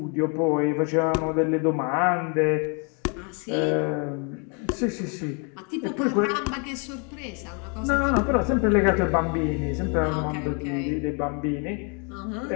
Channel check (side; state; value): right; quieter; 36.5 dB